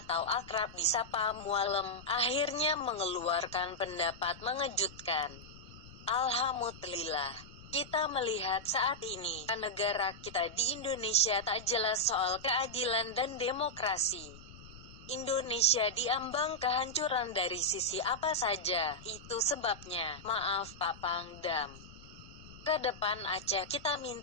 akrab disapa Mualem akhirnya mengeluarkan pendapat mengejutkan. Alhamdulillah, kita melihat saat ini negara kita di Indonesia tak jelas soal keadilan dan demokrasi. Indonesia diambang kehancuran dari sisi apa saja, itu sebabnya, maaf Pak Pangdam. Ke depan Aceh kita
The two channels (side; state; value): left; noise; rumble, 18 dB below the sound